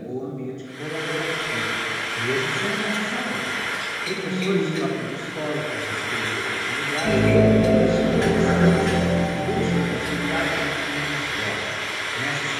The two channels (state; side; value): identical; both; correlation 1.00